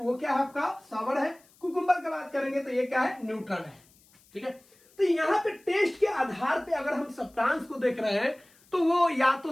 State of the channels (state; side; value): noise; left; hiss, 30 dB below the sound